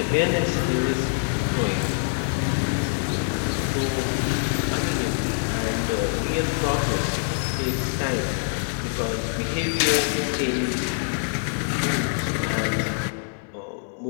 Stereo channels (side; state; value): right; silent; 59 dB below the other